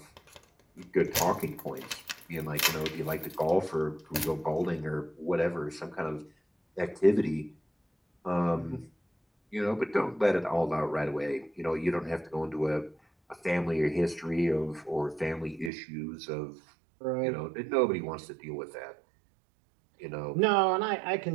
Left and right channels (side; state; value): left; drops out; at 15.7 s